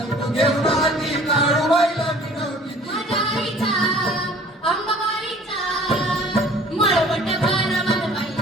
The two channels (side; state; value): both; normal; correlation 0.50